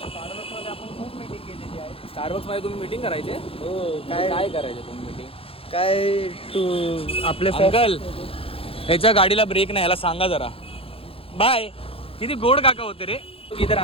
आपण खूप मीटिंग केलेली आहे. स्टारबक्समध्ये तुम्ही मीटिंग करायचे? हो. काय करायचे तुम्ही मीटिंग? काय तू आपले अंकल ह्याच्या गाडीला ब्रेक नाही ह्याला सांगा जरा. बाय. किती गोड काका होते रे. इधर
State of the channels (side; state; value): right; late; 0.27 ms